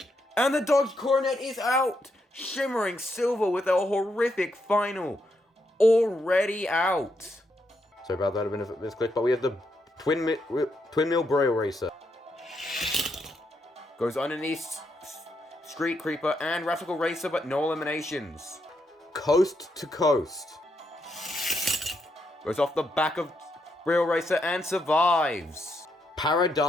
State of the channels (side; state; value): both; normal; correlation 0.79